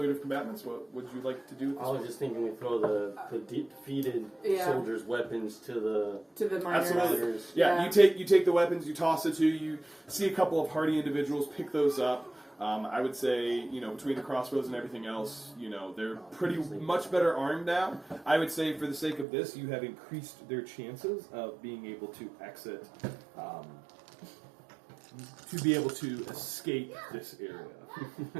of combatants. What would you like to do? With this I was one? just thinking we throw the defeated Yeah. soldiers' weapons to the miners. Absolutely. miners. Yeah, Yeah. you take the weapons, you toss the two. You see a couple of hardy individuals pick those up. I would say, between the crossbows and everything else, they're pretty much better armed now. I would say, for the sake of this, you have increased their chances of being able to exit, to be able to escape this area.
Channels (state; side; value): drops out; left; at 19.2 s